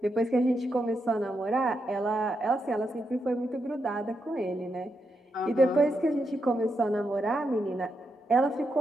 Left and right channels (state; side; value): normal; both; correlation 0.83